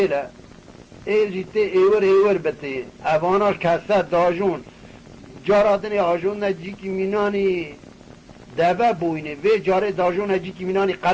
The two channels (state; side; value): identical; both; correlation 1.00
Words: ایل جیته ایور بته اواناش کسته داجون جارادن آجون نجی که مینانی دبه بوینه و جاره داجون نجی که مینانی